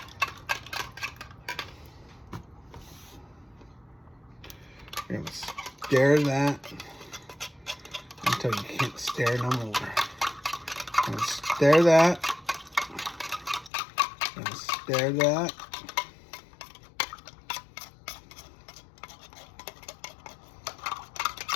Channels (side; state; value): right; drops out; at 13.7 s